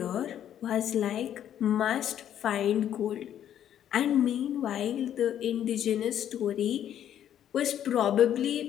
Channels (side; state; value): right; quieter; 10.5 dB